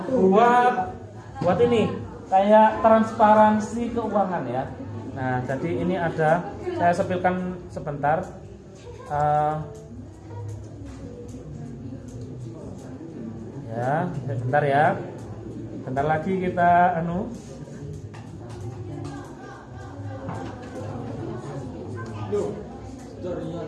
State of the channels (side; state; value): both; identical; correlation 1.00